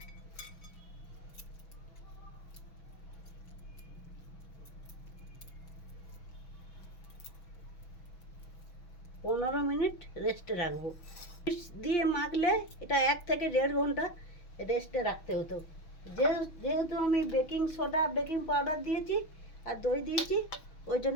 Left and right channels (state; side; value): late; right; 6.1 ms